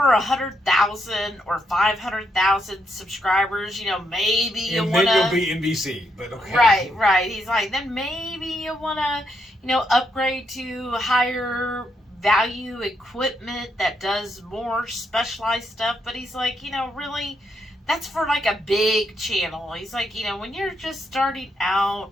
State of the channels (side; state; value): both; normal; correlation 0.79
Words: or 500,000 subscribers, maybe you want to. Then you'll be NBC, but okay. Right. He's like, then maybe you want to, upgrade to higher value equipment that does more specialized stuff. But he's like, really, that's for like a big channel. He's like, when you're just starting out,